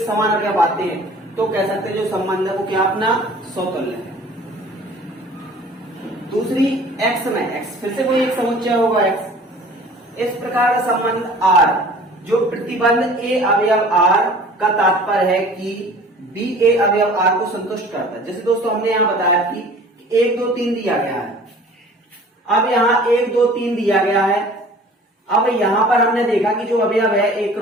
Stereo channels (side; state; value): both; normal; correlation 0.47